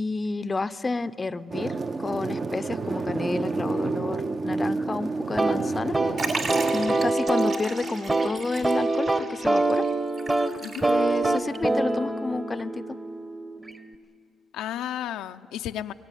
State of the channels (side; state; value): both; normal; correlation 0.90